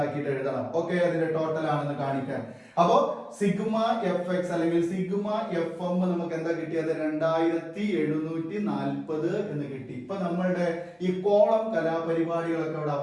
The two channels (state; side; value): identical; both; correlation 1.00